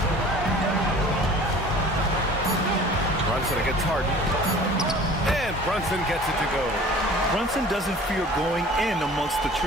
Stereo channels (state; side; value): normal; both; correlation 0.46